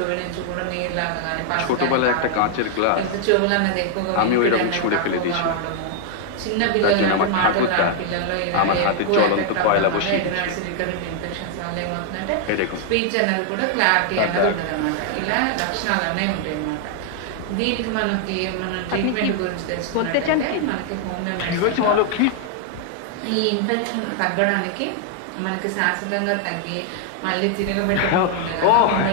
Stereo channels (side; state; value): both; different; correlation 0.00